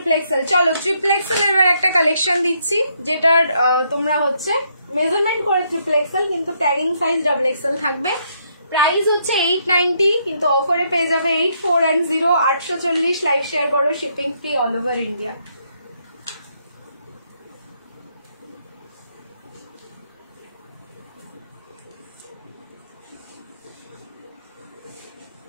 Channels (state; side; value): inverted; both; correlation -0.74